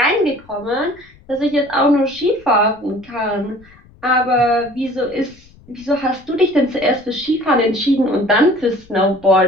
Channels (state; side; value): noise; left; rumble, 26 dB below the sound